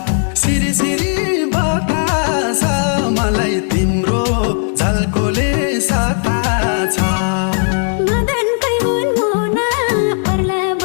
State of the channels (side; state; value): right; silent; 58 dB below the other